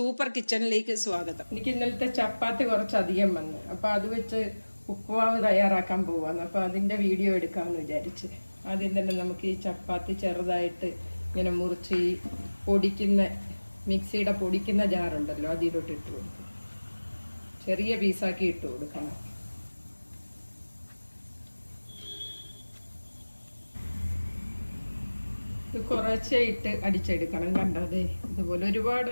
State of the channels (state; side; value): inverted; both; correlation -1.00